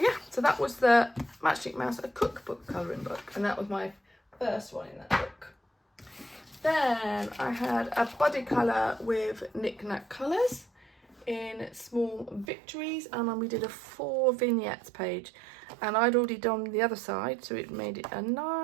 so that was the Matchstick Mouse, a cookbook colouring book, and that was my first one in that book. Then I had a body colour with Knick Knack Colours in Small Victories, and then we did a 4 vignettes page, and I'd already done the other side, so it made it a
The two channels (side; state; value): left; drops out; at 12.5 s